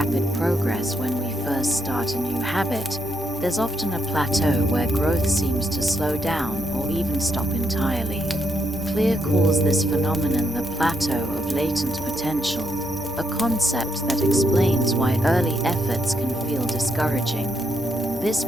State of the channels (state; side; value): normal; both; correlation 0.78